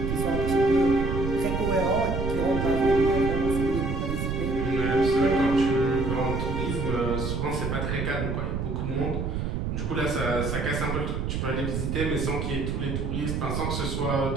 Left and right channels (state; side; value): noise; right; rumble, 1 dB below the sound